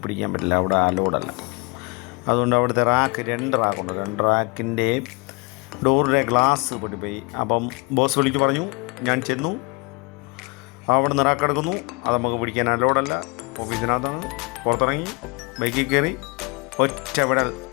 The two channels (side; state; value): right; quieter; 28.7 dB